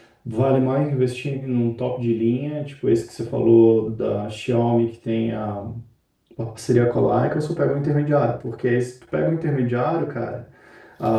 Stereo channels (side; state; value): both; identical; correlation 1.00